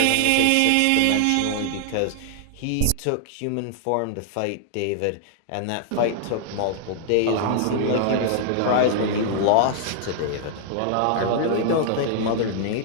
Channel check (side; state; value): both; different; correlation 0.00